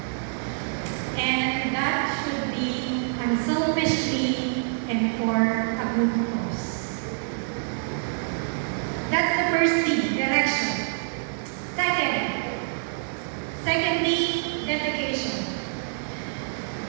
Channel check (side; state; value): left; silent; digital silence